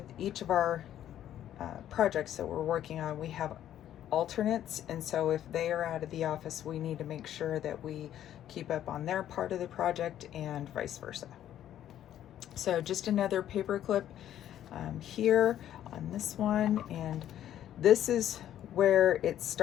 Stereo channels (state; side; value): quieter; right; 11.3 dB